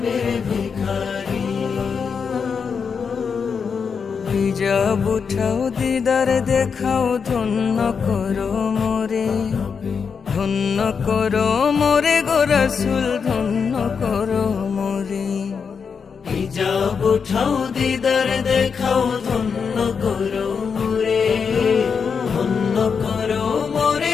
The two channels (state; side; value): quieter; right; 6.0 dB